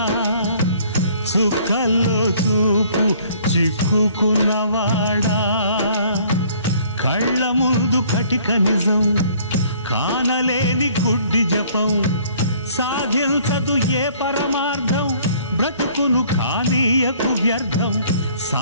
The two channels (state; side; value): inverted; both; correlation -0.57